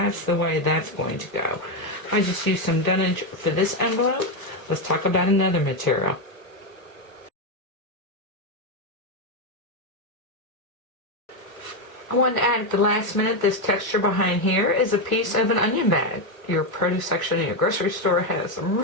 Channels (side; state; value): right; late; 1.1 ms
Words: the way that's going to go. I just used some dunnage for this envelope. Let's talk about another material. I wanted to add at the last minute, this texture behind here is a piece of an onion bag. Your produce section in your grocery store has some